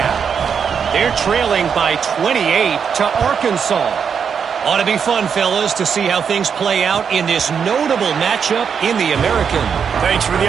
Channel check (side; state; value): left; quieter; 6.9 dB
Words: They're trailing by 28 to Arkansas. Ought to be fun, fellas, to see how things play out in this notable matchup in the American. Thanks for the